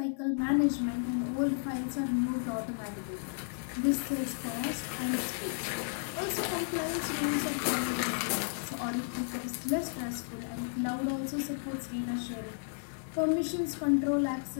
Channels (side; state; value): right; silent; 56 dB below the other